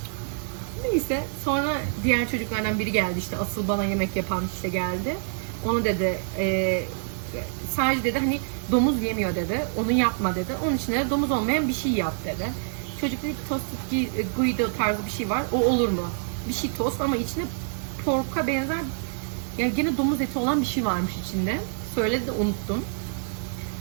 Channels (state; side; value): silent; left; digital silence